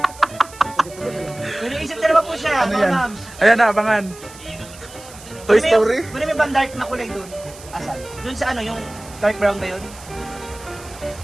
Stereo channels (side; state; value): right; noise; hiss, 19 dB below the sound